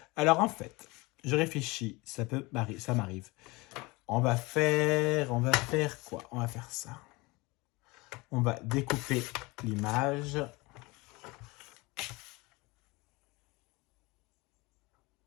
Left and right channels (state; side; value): quieter; right; 23.9 dB